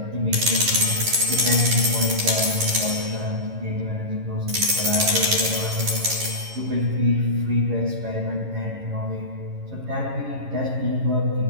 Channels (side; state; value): left; late; 11 ms